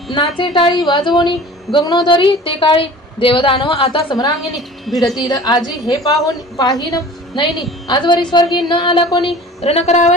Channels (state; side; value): normal; both; correlation 0.42